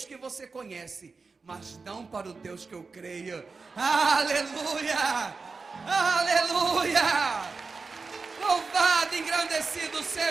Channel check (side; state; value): left; quieter; 4.4 dB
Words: que você conhece, mas não para o Deus que eu creio. Aleluia! Aleluia! Louvado, engrandecido